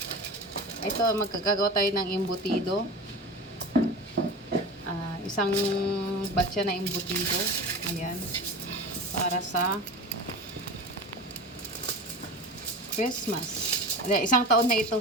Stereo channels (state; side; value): normal; both; correlation 0.31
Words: ito magkagawa tayo ng embutido. Isang batcha na embutido. Ayan. Para sa Christmas. Isang taon na ito.